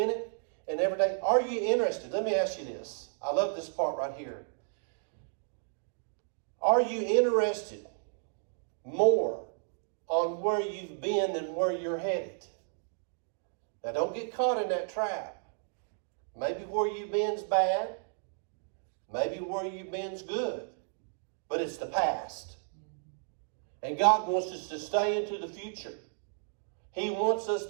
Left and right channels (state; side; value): silent; left; digital silence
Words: and every day? Are you interested? Let me ask you this. I love this part right here. Are you interested more on where you've been than where you're headed? Now, don't get caught in that trap. Maybe where you've been's bad. Maybe where you've been's good. But it's the past. And God wants us to stay into the future. He wants us